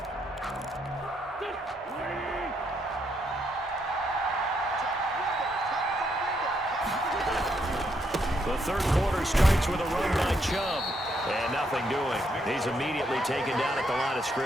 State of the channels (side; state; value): both; normal; correlation 0.76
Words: The third quarter starts with a run by Chubb. And nothing doing. He's immediately taken down at the line of